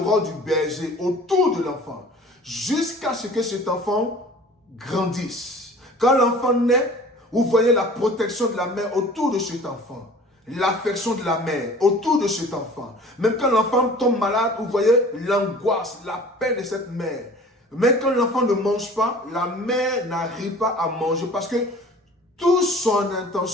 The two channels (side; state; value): both; normal; correlation 0.46